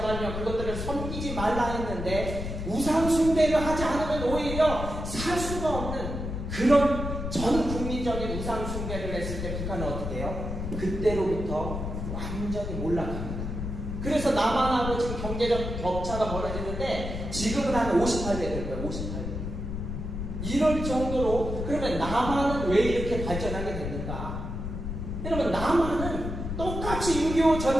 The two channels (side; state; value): left; noise; rumble, 5 dB below the sound